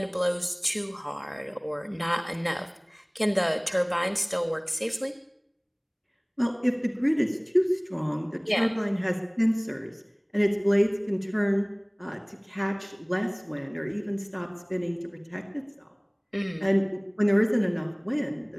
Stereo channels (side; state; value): both; identical; correlation 1.00